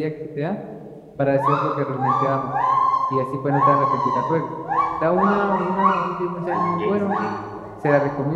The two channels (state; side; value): identical; both; correlation 1.00